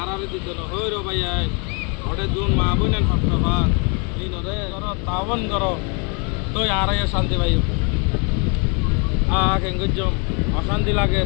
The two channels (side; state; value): right; quieter; 34.8 dB